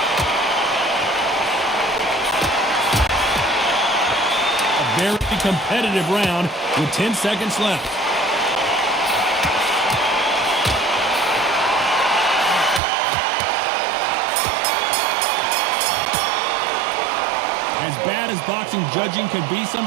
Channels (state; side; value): drops out; left; at 12.8 s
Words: A very competitive round with 10 seconds left. As bad as boxing judging can be